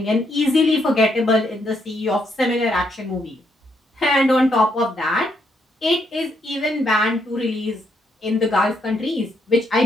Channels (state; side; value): normal; both; correlation 0.76